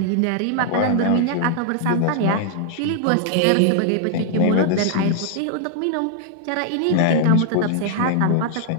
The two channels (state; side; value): different; both; correlation -0.01